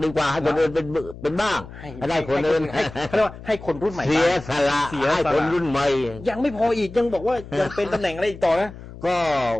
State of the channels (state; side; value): noise; left; hum, 15 dB below the sound